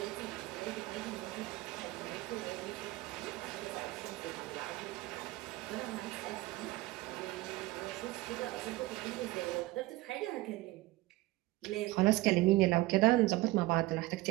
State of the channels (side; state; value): left; quieter; 19.3 dB